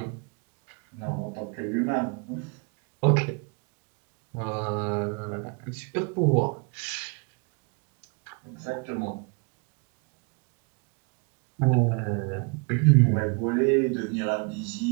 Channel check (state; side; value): quieter; left; 34.2 dB